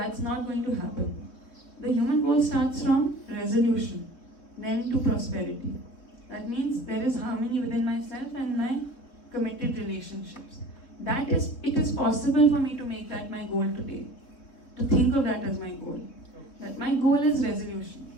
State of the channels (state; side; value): late; right; 3.6 ms